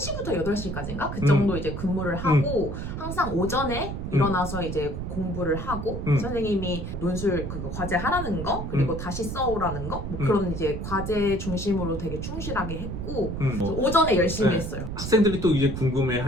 8시까지인가? 그 정도 이제 근무를 하고 항상 오전에 일어나서 이제 공부를 하고 선생님이 논술 그거 과제 하라는 거 그리고 다시 써오라는 거 뭐 그런 이제 과제 중심으로 되게 충실하게 했고 그래서 오전에 열심히 했어요. 학생들이 또 이제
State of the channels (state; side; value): noise; right; rumble, 5 dB below the sound